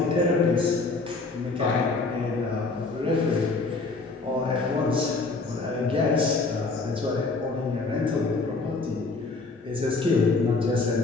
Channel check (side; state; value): right; quieter; 3.8 dB